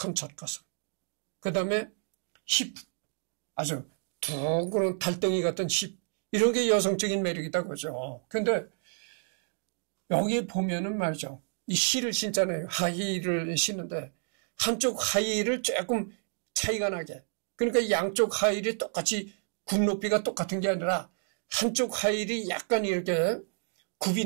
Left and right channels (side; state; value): left; silent; 58 dB below the other